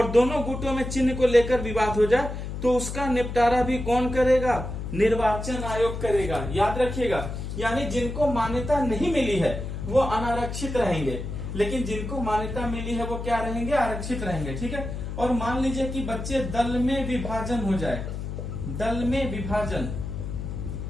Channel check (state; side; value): noise; left; hum, 6 dB below the sound